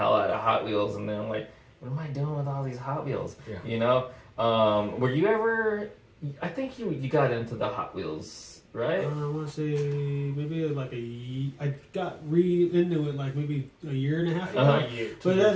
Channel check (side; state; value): both; identical; correlation 1.00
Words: out of Hot Wheels, and then like, what am I doing with all these Hot Wheels? You know, were you ever? I think you got into the Hot Wheels, right? I want to say maybe like I got into it like maybe a year and a half ago. But